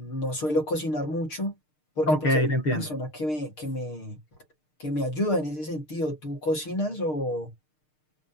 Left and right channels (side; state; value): right; late; 6.6 ms